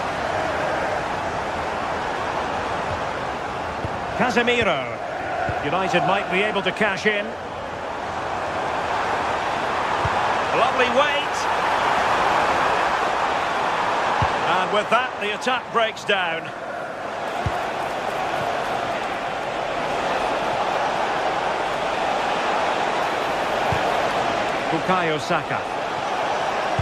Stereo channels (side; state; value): both; identical; correlation 1.00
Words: Casemiro. United might be able to cash in. Lovely weight. And with that, the attack breaks down. Bukayo Saka.